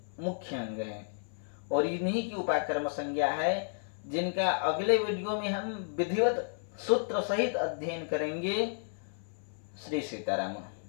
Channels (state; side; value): silent; right; 56 dB below the other